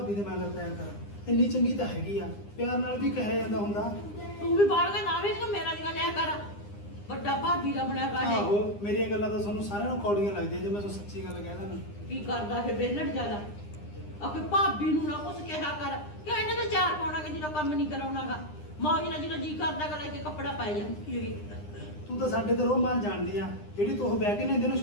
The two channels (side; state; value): right; late; 9.8 ms